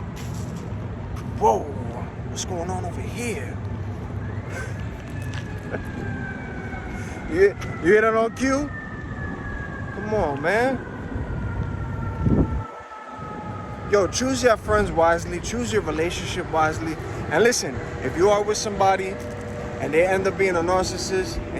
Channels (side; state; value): both; identical; correlation 1.00